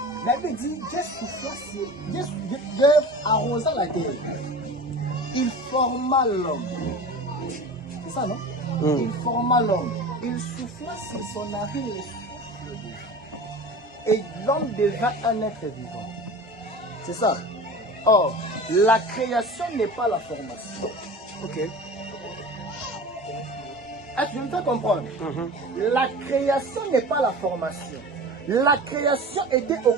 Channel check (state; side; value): normal; both; correlation 0.35